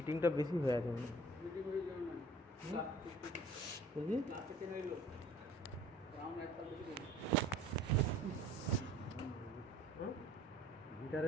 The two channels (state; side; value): normal; both; correlation 0.50